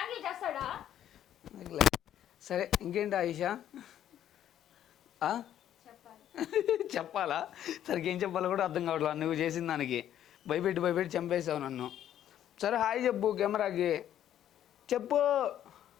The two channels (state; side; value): quieter; right; 11.0 dB